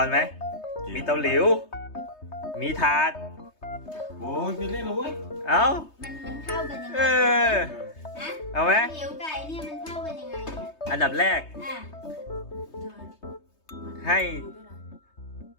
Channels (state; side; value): late; right; 3.2 ms